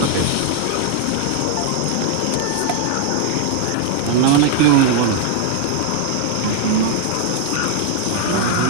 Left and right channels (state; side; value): different; both; correlation 0.00